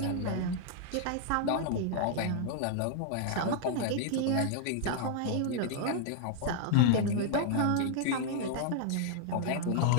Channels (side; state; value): both; different; correlation -0.01